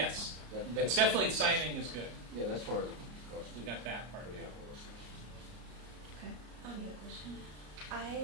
That's It's definitely signing is good. Yeah, that's part of the cost. We got that part. Yeah.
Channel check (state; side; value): late; left; 34 ms